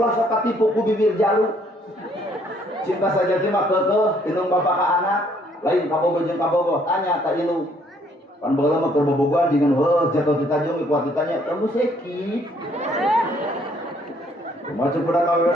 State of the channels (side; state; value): both; normal; correlation 0.65